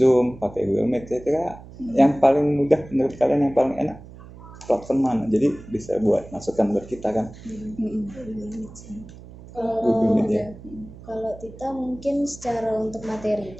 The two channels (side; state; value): right; noise; hum, 18 dB below the sound